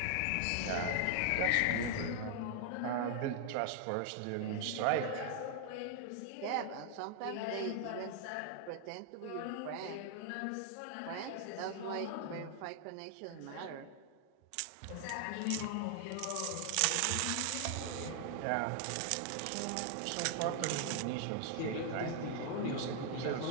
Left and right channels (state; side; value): different; both; correlation 0.00